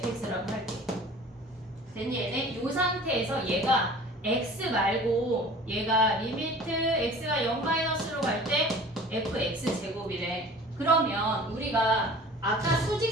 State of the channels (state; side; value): normal; both; correlation 0.44